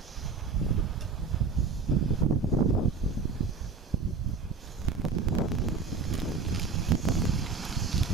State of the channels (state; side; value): quieter; left; 5.0 dB